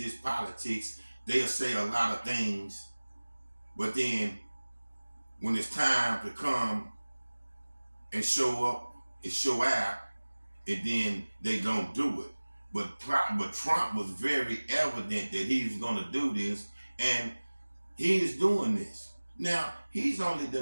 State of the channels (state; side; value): inverted; both; correlation -1.00